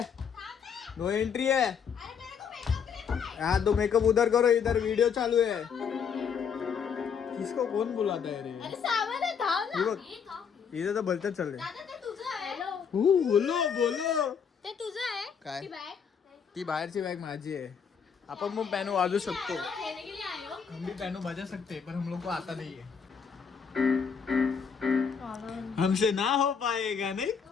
नो एंट्री है. हाँ तो मेकअप उधर करो, इधर वीडियो चालू है. किसको कौन बुलाता है रे? इधर तो भलतच चाल रहे. बोलो बोलो. ते तुझं आहे काय? ती बाहेरची बॅग माझी आहे. अपन वो पैनू वाजू सकतो. हम भी पैनू बजा सकते, पर हम लोग को आता नहीं है. हमसे ना हो पाएगा नाही.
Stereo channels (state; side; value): quieter; right; 6.7 dB